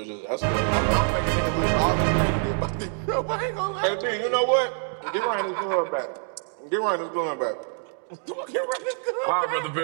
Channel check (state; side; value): silent; left; 61 dB below the other